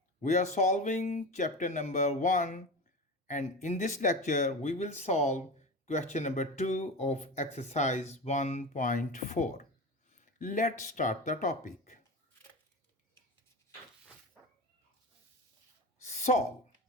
We are solving chapter number 1, and in this lecture we will solve question number 2 of exercise 1.4. Let's start the topic. Solve.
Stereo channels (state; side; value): normal; both; correlation 0.26